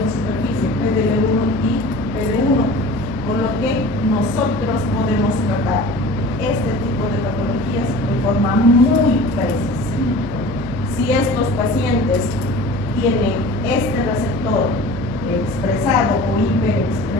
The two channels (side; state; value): left; noise; hum, 11 dB below the sound